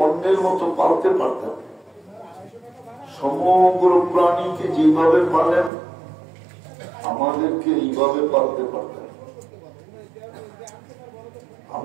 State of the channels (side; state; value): left; drops out; at 5.7 s